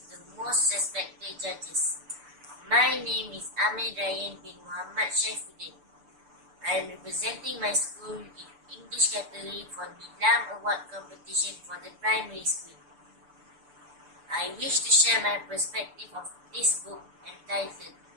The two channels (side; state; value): left; late; 6.9 ms